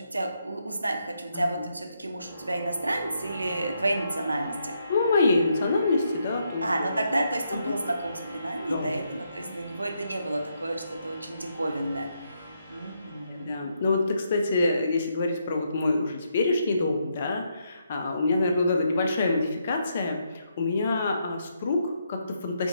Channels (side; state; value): both; inverted; correlation -0.78